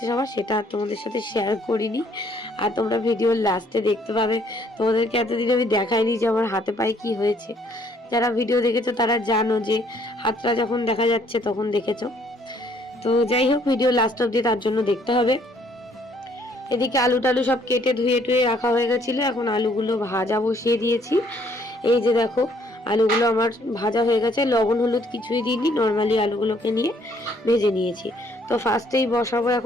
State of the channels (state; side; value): normal; both; correlation 0.64